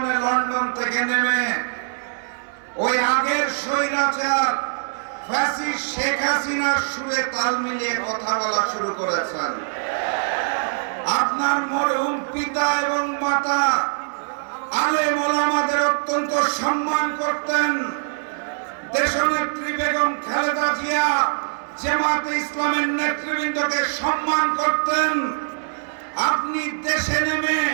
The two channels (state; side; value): silent; left; 64 dB below the other